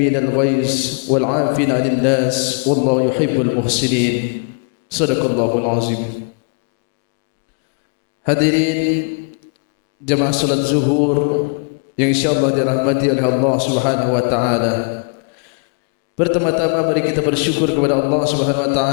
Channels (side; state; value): right; quieter; 39.4 dB